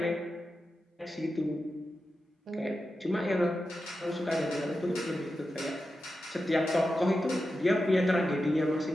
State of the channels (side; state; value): both; normal; correlation 0.91